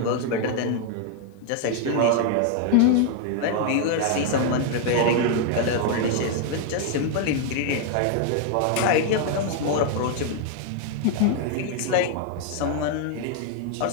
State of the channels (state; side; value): different; both; correlation 0.00